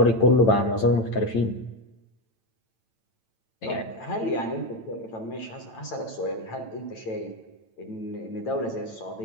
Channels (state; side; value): late; right; 9.0 ms